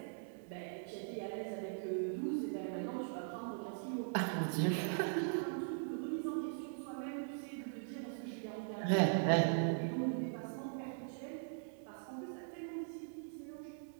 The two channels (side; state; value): left; silent; digital silence